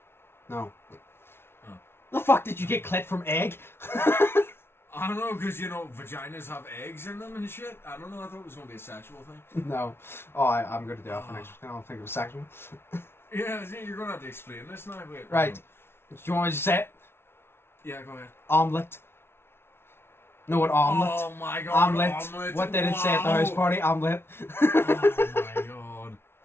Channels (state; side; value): late; right; 0.12 ms